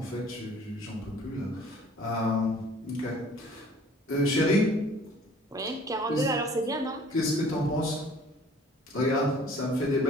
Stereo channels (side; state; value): both; normal; correlation 0.52